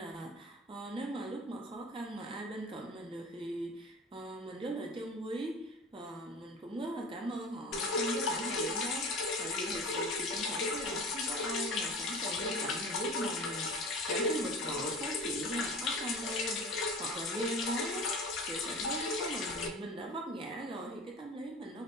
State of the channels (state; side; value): normal; both; correlation 0.36